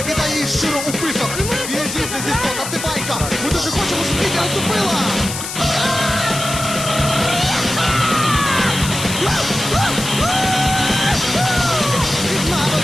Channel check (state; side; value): noise; left; hiss, 6 dB below the sound